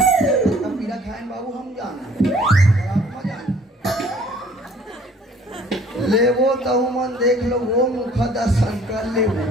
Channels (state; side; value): normal; both; correlation 0.54